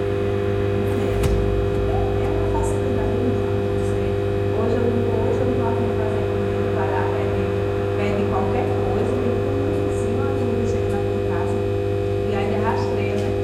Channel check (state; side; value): identical; both; correlation 1.00